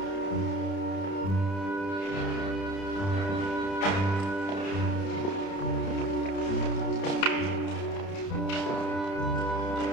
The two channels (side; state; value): right; late; 30 ms